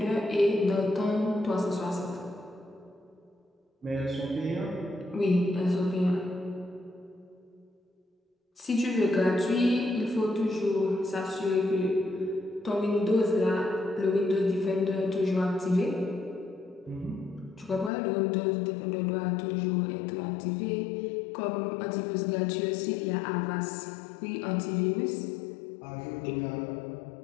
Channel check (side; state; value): right; drops out; at 17.9 s